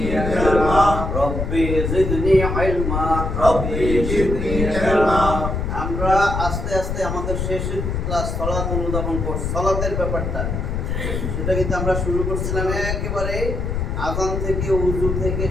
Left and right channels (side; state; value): left; noise; rumble, 2 dB below the sound